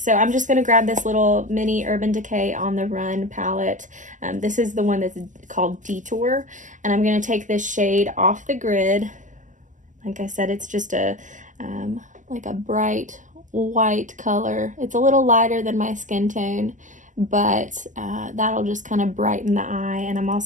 I'm just going to grab this little mini Urban Decay On the Run palette. This is the one that's called Detour, and I'm going to take this shade off the grid. Like I said, it's just a like a bright white color. It's a little lighter than my skin tone, but that'll just kind of brighten the eye. And I'm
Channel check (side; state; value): left; late; 0.37 ms